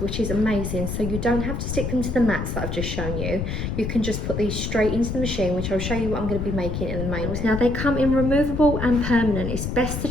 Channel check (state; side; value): noise; left; rumble, 3 dB below the sound